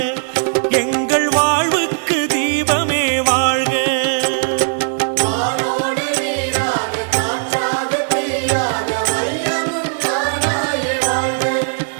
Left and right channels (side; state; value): left; silent; digital silence